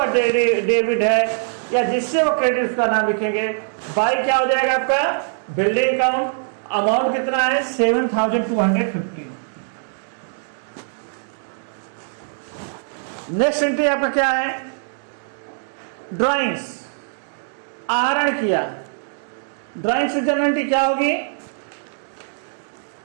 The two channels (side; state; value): left; silent; digital silence